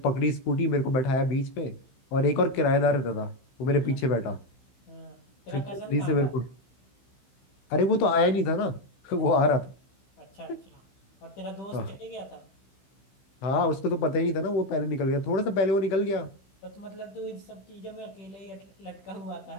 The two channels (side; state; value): right; late; 15 ms